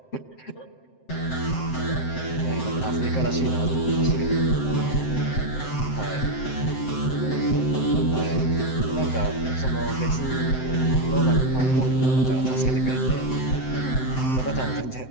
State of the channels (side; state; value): right; late; 7.7 ms